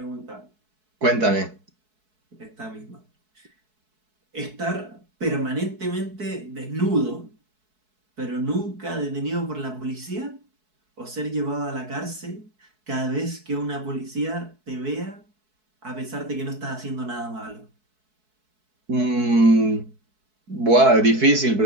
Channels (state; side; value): late; left; 4.6 ms